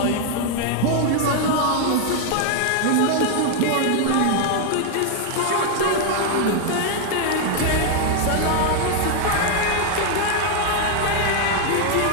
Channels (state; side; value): different; both; correlation 0.00